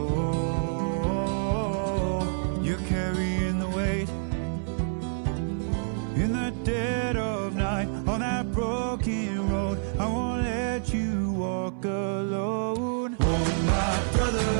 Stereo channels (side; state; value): left; silent; digital silence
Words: you're carrying the weight in the dead of night on that broken road. I won't let you walk alone. Oh, my brother,